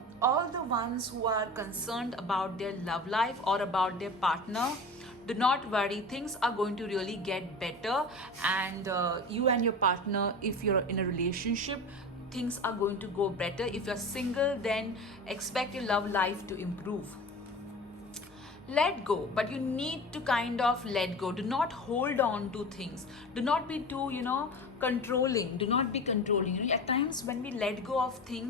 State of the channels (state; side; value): normal; both; correlation 0.33